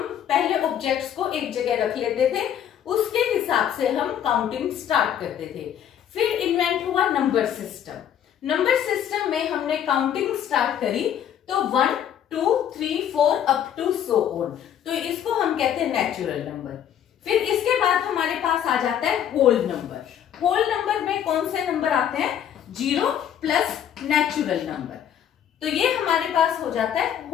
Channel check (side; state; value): right; quieter; 9.6 dB